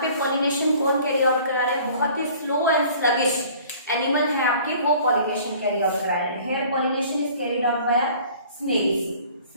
पे pollination कौन कैरी आउट करा रहे हैं, बहुत ही स्लो एंड स्लगिश एनिमल है आपके, वो पॉलिनेशन कैरी आउट करा रहे हैं। Here pollination is carried out by snails.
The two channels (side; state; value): both; inverted; correlation -0.50